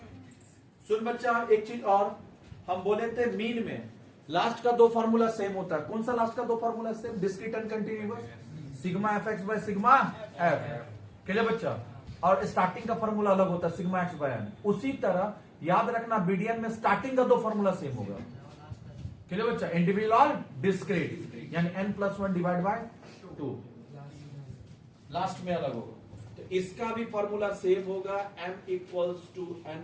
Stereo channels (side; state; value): both; identical; correlation 1.00